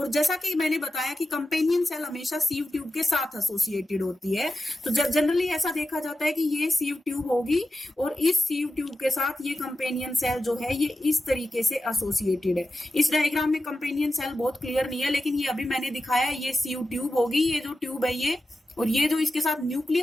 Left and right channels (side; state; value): both; normal; correlation 0.92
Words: जैसा कि मैंने बताया कि कंपेनियन सेल हमेशा सीव ट्यूब के साथ एसोसिएटेड होती है। तो जनरली ऐसा देखा जाता है कि ये सीव ट्यूब होगी और इस सीव ट्यूब के साथ ये कंपेनियन सेल जो है ये इस तरीके से एसोसिएटेड है। इस डायग्राम में कंपेनियन सेल बहुत क्लियर नहीं है लेकिन ये अभी मैंने दिखाया ये सीव ट्यूब होगी, ये जो ट्यूब है ये, और ये जो इसके साथ